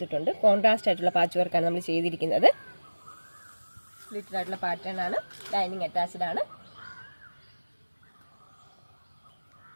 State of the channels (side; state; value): both; inverted; correlation -1.00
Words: കോൺട്രാസ്റ്റ് ആയിട്ടുള്ള പാച്ച് വർക്കാണ് നമ്മൾ ചെയ്തിരിക്കുന്നത്. സ്ലിറ്റഡ് ആയിട്ടുള്ള പാറ്റേൺ ആണ്. ലൈനിങ് അറ്റാച്ച്ഡ് ആണ്.